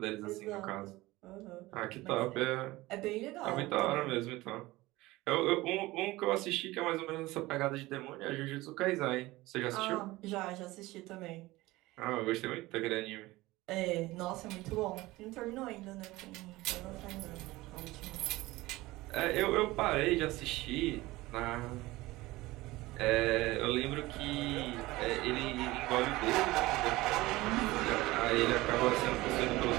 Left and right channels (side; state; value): left; quieter; 19.4 dB